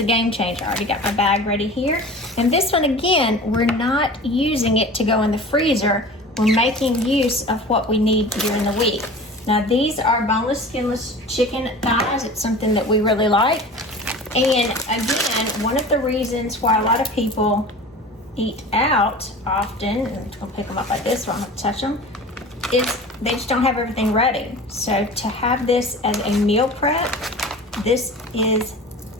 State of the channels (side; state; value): both; normal; correlation 0.38